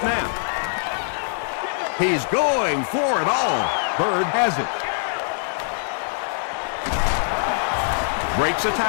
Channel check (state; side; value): silent; right; 63 dB below the other